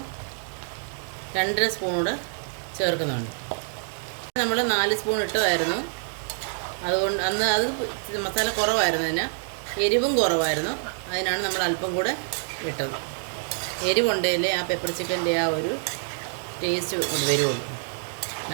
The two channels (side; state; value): left; silent; digital silence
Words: 2.5 സ്പൂൺ കൂടെ ചേർക്കുന്നുണ്ട്. നമ്മൾ 4 സ്പൂൺ ഇട്ടതായിരുന്നു, അതുകൊണ്ട് അന്ന് അത് മസാല കുറവായിരുന്നതിന്, എരിവും കുറവായിരുന്നു, അതിനാണ് നമ്മൾ അല്പം കൂടെ ഇട്ടത്. എരിവുണ്ടെങ്കിലേ ആ പെപ്പർ ചിക്കൻ്റെ ആ ഒരു ടേസ്റ്റ് കൊണ്ട് വരുള്ളൂ.